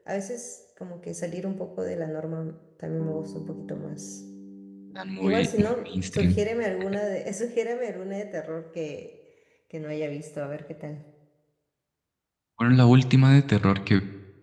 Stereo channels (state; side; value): identical; both; correlation 1.00